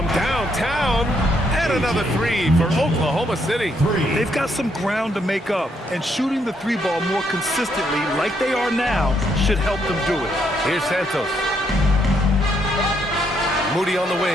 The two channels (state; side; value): normal; both; correlation 0.74